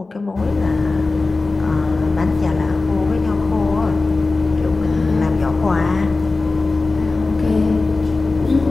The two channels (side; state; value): right; quieter; 3.5 dB